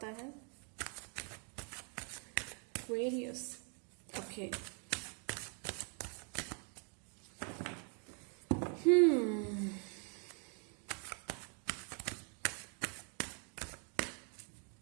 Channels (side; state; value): left; quieter; 38.9 dB